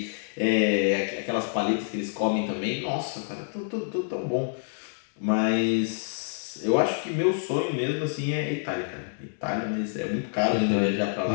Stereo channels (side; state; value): right; silent; digital silence